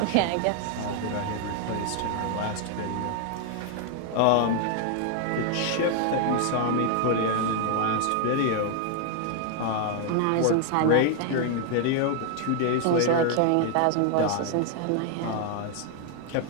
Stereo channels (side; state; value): both; different; correlation 0.00